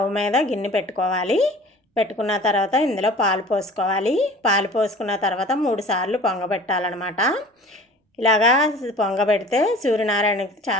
మీద గిన్నె పెట్టుకోవాలి. పెట్టుకున్న తర్వాత ఇందులో పాలు పోసుకోవాలి. పాలు పోసుకున్న తర్వాత 3 సార్లు పొంగబెట్టాలన్నమాట. ఇలాగా పొంగబెడితే సూర్యనారాయణకి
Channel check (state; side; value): normal; both; correlation 0.44